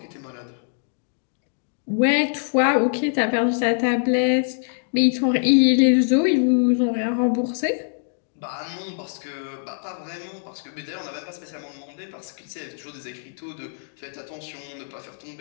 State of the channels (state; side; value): silent; right; digital silence